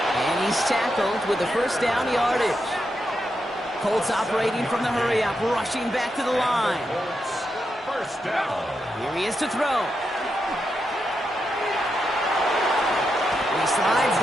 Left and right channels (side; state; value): both; normal; correlation 0.85